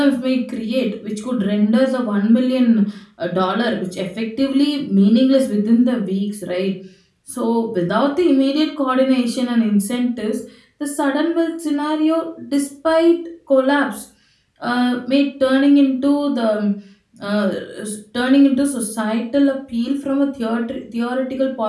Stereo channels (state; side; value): identical; both; correlation 1.00